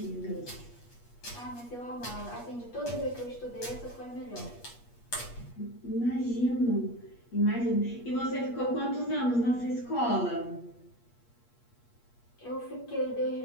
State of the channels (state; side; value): late; right; 8.4 ms